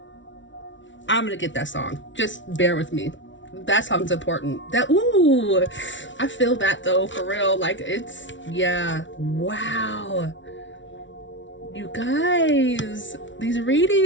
I'm gonna get that song. Just bear with me. That song's important. Ooh, I feel that though, for real. Like yeah. Wow. You guys, these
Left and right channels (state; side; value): late; right; 0.55 ms